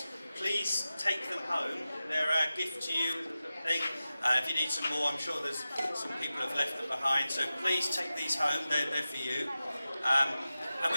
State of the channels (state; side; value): inverted; both; correlation -0.94